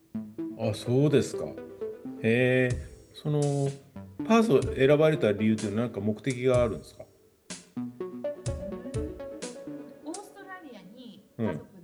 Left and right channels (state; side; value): identical; both; correlation 1.00